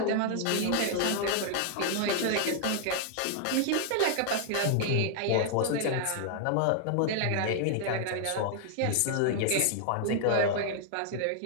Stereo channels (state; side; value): different; both; correlation 0.00